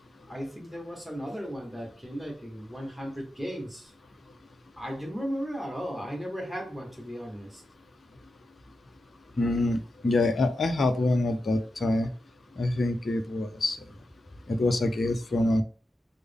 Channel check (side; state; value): both; normal; correlation 0.89